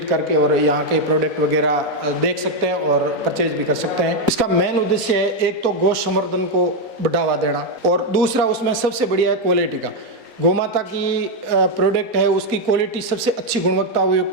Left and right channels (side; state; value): left; late; 4.0 ms